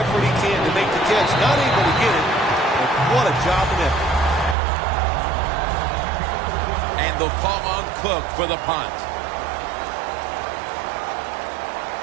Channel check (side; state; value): left; drops out; at 4.5 s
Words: he can to make the catch. Not able to get it, but what a job and effort. And they'll call on Cook for the punt.